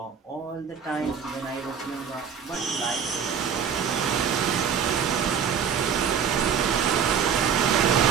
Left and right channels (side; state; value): left; quieter; 7.3 dB